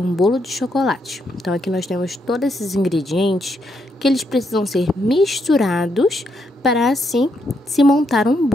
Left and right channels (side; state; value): both; normal; correlation 0.78